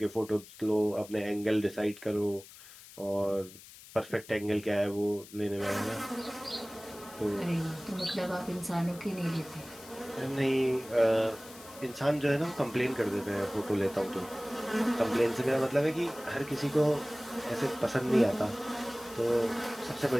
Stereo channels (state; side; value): noise; left; hiss, 19 dB below the sound